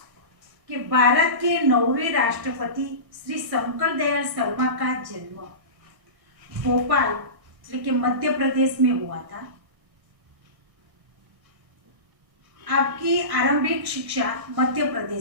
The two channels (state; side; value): late; left; 1.6 ms